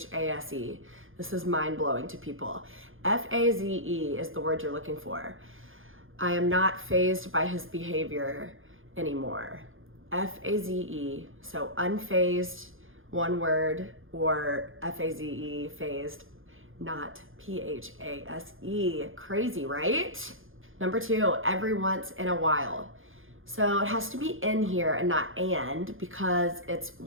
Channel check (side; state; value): left; late; 0.59 ms